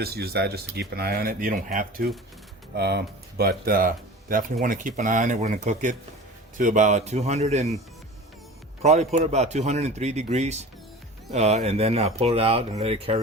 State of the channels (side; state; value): both; normal; correlation 0.37